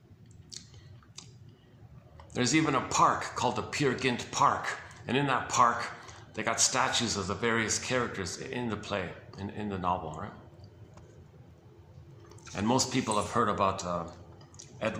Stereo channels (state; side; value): identical; both; correlation 1.00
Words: There's even a park called the Peer Gynt Park. And in that park, they got statues of the various characters in the play, in the novel, right? And most people have heard about